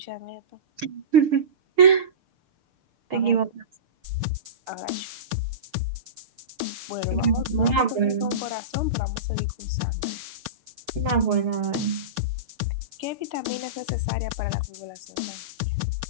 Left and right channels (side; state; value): left; late; 6.7 ms